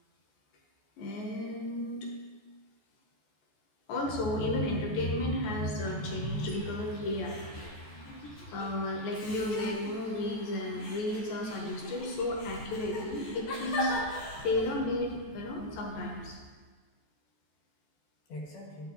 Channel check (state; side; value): late; right; 14 ms